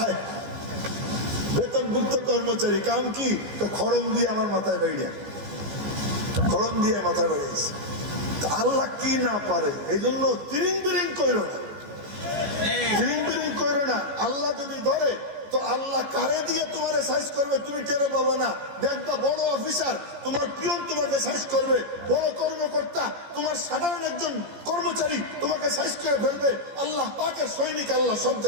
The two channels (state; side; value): late; left; 14 ms